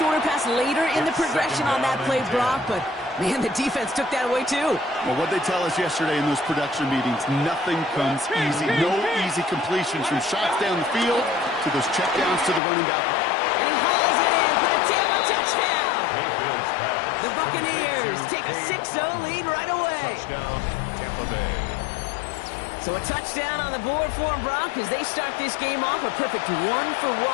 pass later in the progression on that play, Brock, but man, the defense took that away too. Well, what they tell us yesterday in those production meetings, nothing comes easy. No easy completions from shots down the field to those checkdowns to the running back. And he hauls it in for the Tampa touchdown. The Buccaneers take a 6-0 lead right away. Touchdown, Tampa Bay. So a touchdown on the board for them, Brock, as they start this game off a perfect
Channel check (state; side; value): drops out; right; at 12.6 s